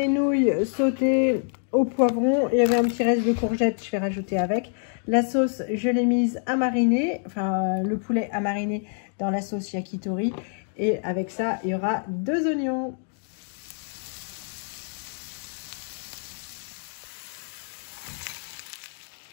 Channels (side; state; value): right; silent; 59 dB below the other